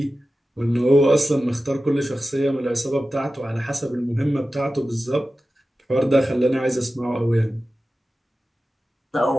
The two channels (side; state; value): both; normal; correlation 0.94